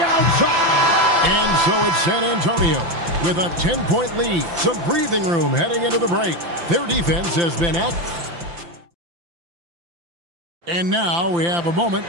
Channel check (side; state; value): left; late; 5.8 ms